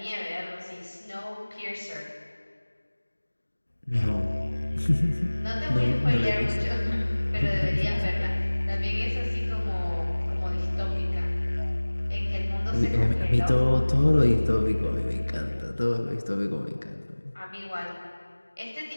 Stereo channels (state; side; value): inverted; both; correlation -1.00